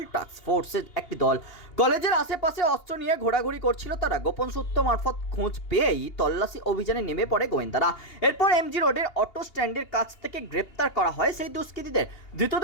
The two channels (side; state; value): right; late; 2.8 ms